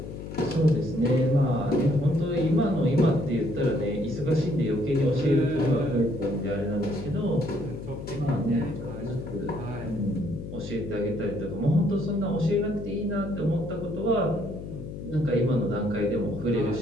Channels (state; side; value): noise; left; hum, 9 dB below the sound